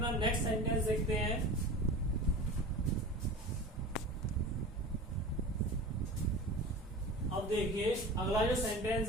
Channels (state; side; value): normal; both; correlation 0.35